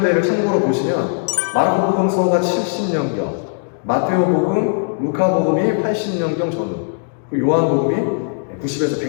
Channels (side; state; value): right; silent; digital silence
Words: 참고로 보시면 마르코 복음서가 70년경, 마테오 복음, 루카 복음이 80년경 전후, 요한 복음이 90에서